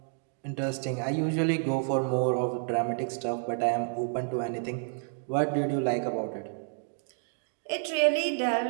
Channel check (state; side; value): silent; left; digital silence